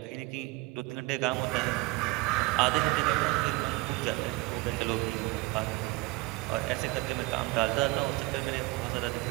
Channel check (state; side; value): quieter; left; 21.8 dB